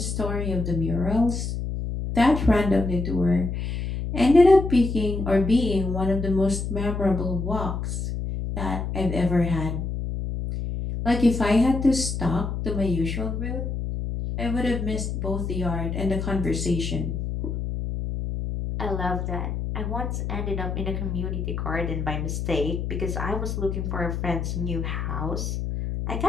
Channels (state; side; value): noise; left; hum, 3 dB below the sound